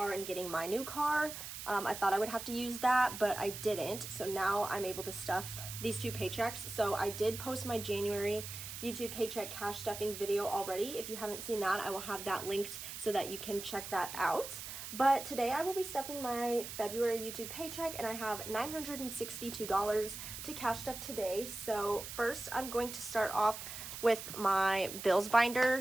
and getting my new car. I thought I would have to use that, but I didn't. So now I'm able to stuff these two paychecks. So I did post my January YouTube paycheck cash stuffing video already. If you haven't seen that, I will have that linked so that you can check that out. But today I will be stuffing my February YouTube paycheck, and I have $962 to cash stuff today. So first I'm going to start off with my bills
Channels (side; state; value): right; noise; hiss, 9 dB below the sound